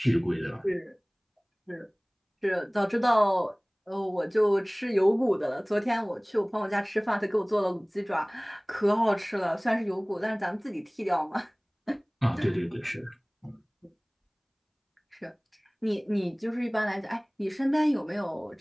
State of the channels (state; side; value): identical; both; correlation 1.00